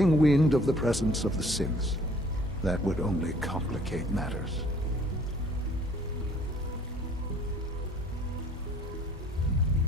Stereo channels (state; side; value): normal; both; correlation 0.56